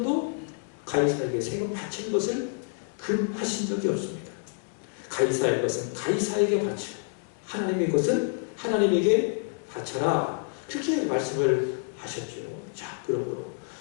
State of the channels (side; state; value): right; silent; 59 dB below the other